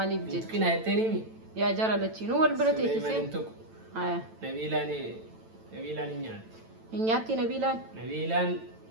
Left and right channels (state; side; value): late; left; 9.0 ms